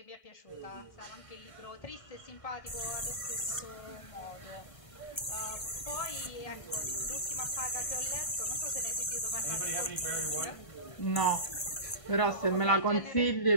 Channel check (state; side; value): late; right; 1.3 ms